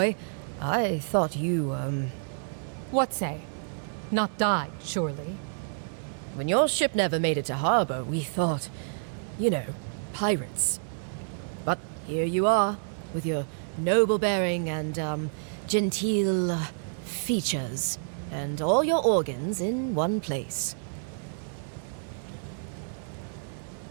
I thought you, What say? Not died, surely? When your ship never made it to harbor, we thought, you know, pirates. But here you are, with your noble bearing and, genteel features, and all your organs in one place.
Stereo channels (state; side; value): silent; left; 59 dB below the other